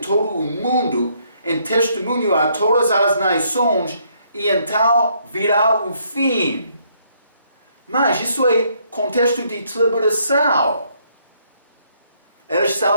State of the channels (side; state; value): both; inverted; correlation -0.70